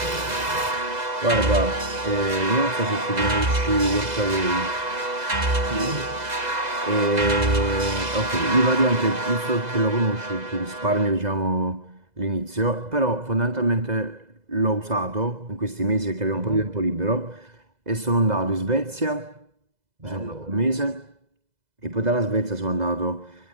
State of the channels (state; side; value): late; left; 2.0 ms